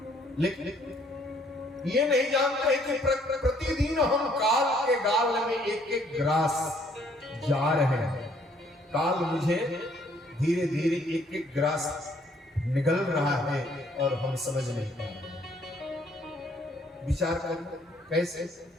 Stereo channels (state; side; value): normal; both; correlation 0.64